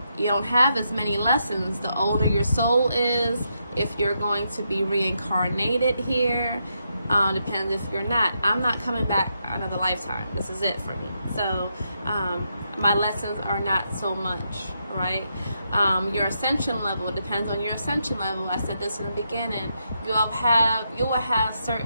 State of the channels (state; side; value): inverted; both; correlation -0.82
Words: You don't have as many lessons the older your soul is. If you're going to be reincarnated here, depends if you're not. I'm not coming back another lifetime. This is it for me. So my lessons are not so much, right? Your ascension level depends on your ascension level. I said this in the beginning. You will have